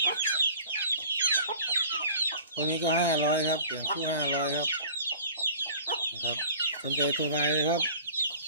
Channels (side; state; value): both; inverted; correlation -0.45